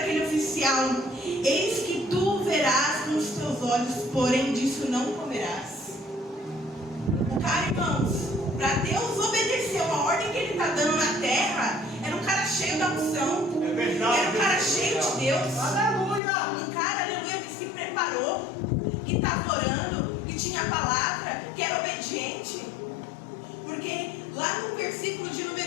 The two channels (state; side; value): drops out; right; at 16.2 s